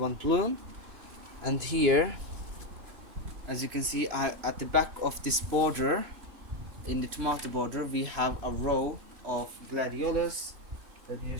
bloom. And here, as you can see, at the back of this border, in the tomato border, we have a row of gladiolus. Let me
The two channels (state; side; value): late; left; 3.0 ms